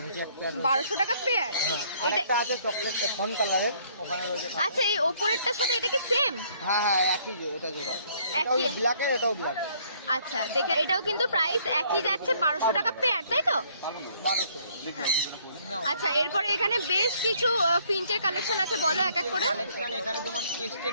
নিচে এক পেয়ার। 1200 টাকা পেয়ার। হ্যাঁ, আরেকটা আছে চকলেট ফন কালারের, ওখানে রয়েছে। আচ্ছা, এই ওপরেরটার সাথে এটা কি সেম? হ্যাঁ, একই, এটা জোড়া। এটাও ব্ল্যাকের, এটাও ব্ল্যাকের। আচ্ছা, দেখে এটাও কিন্তু প্রাইস একই যাচ্ছে, 1200 টাকা পেয়ার, তাই তো? 1200। হ্যাঁ। আচ্ছা, এরপরে এখানে বেশ কিছু ফিঞ্চের কালেকশন আছে, বলো এক এক করে। কালেকশন এখানে তোমার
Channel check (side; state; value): both; inverted; correlation -0.63